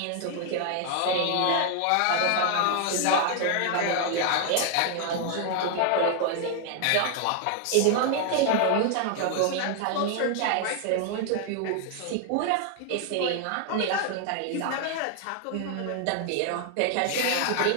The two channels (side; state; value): both; different; correlation 0.00